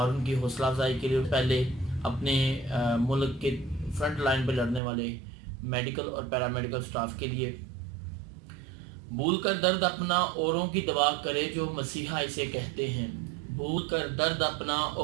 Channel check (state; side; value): drops out; left; at 4.8 s